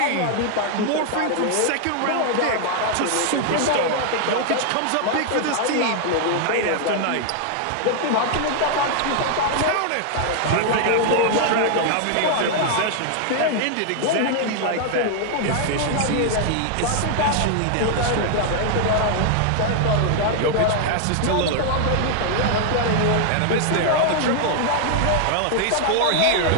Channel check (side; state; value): both; different; correlation 0.00